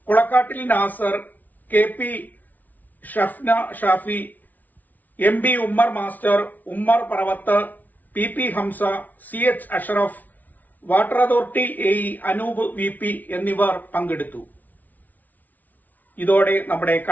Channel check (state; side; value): late; right; 0.079 ms